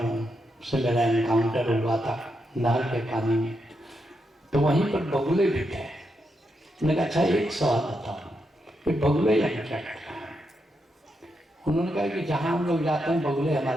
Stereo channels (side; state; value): both; normal; correlation 0.83